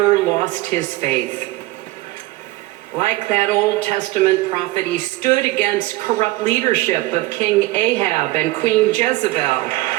lost his faith. Like that Old Testament prophet, he stood against corrupt leadership of King Ahab and Queen Jezebel.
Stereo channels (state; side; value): quieter; left; 19.0 dB